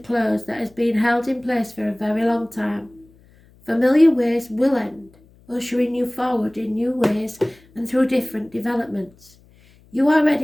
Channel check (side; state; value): left; noise; hum, 29 dB below the sound